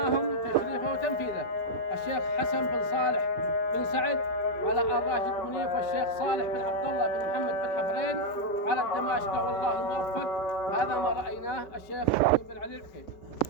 تشريفه وتنفيذه الشيخ حسن بن صالح بن سعد على آل راشد بن منيف، والشيخ صالح بن عبد الله بن محمد بن حفرين على الدماشقة، والله الموفق. هذا ما رأيناه الشيخ بن علي الحكيم.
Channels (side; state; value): right; late; 5.2 ms